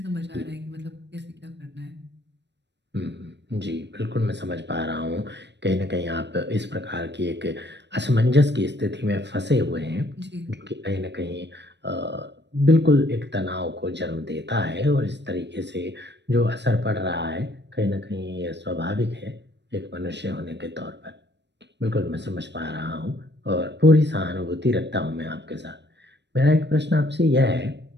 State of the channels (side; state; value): left; late; 0.51 ms